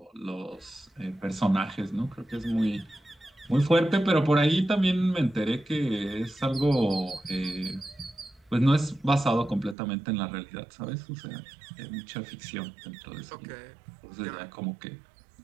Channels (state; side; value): drops out; left; at 9.8 s